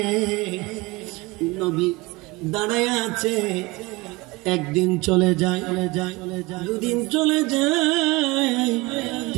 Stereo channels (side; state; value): left; quieter; 23.3 dB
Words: নবী দাঁড়ায় আছে। একদিন চলে যায়, 2 দিন চলে যায়,